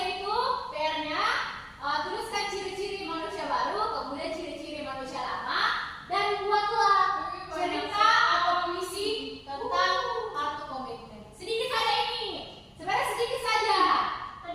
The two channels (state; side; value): identical; both; correlation 1.00